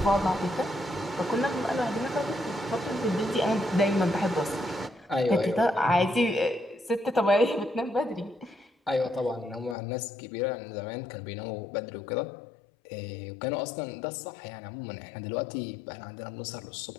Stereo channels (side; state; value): right; drops out; at 9.8 s